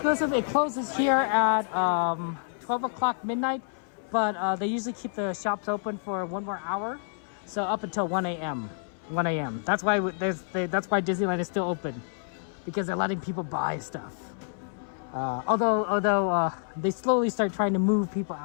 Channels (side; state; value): right; silent; 59 dB below the other